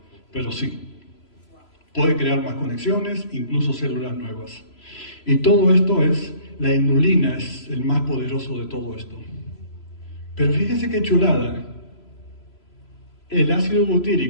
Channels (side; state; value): right; late; 3.0 ms